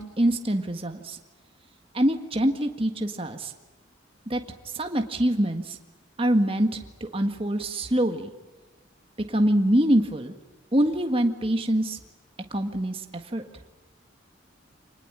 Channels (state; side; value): normal; both; correlation 0.83